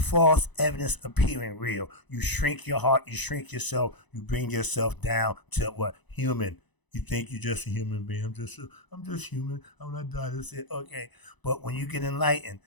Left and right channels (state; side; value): late; right; 1.0 ms